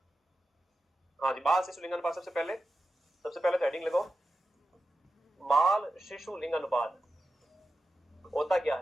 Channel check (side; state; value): both; normal; correlation 0.91